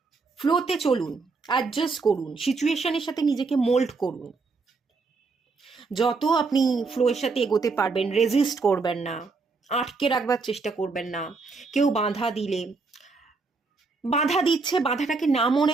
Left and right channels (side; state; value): left; quieter; 4.2 dB